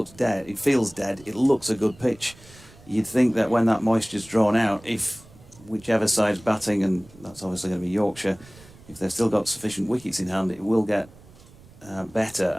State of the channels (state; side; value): noise; right; rumble, 23 dB below the sound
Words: dead, it feels dead, it looks a good pitch. You'd think that when that moisture's drawn out, if whichever side's batting, and that's obviously going to be Yorkshire, if they've still got sufficient wickets in hand, it will get better,